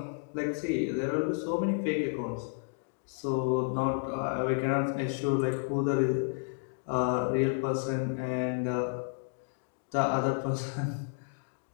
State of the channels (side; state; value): right; silent; digital silence